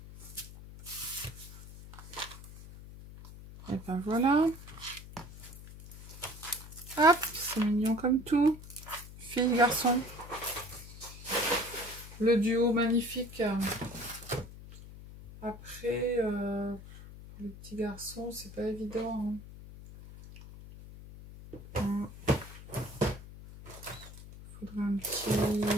Et ben voilà. Hop, c'est mignon comme tout. Fille, garçon. Le duo magnifique. Après, les petits garçons, c'est pas évident. Hein. Faudrait un petit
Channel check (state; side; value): noise; left; hum, 15 dB below the sound